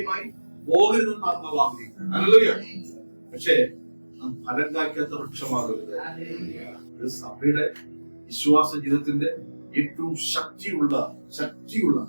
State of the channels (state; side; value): inverted; both; correlation -1.00